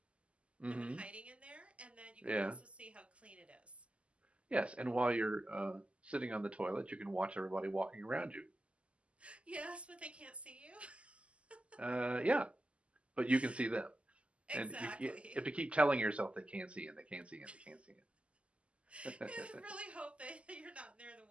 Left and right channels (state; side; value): late; left; 0.057 ms